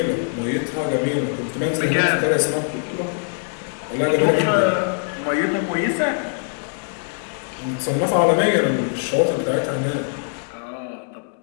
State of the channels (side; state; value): right; silent; digital silence